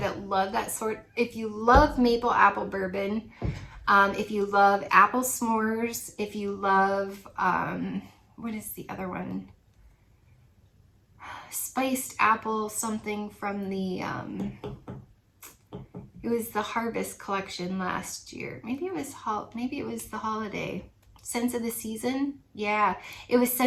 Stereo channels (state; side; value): identical; both; correlation 1.00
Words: love that sort. If you love maple apple bourbon, if you love apple s'mores, if you love, what is the other one? Spiced apple something from the, it was the Harvest collection last year. Maybe it was the holiday. Scents of the Season? Yeah, it was